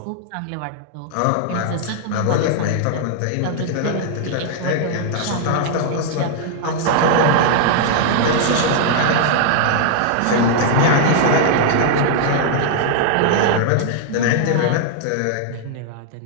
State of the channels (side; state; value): both; different; correlation -0.01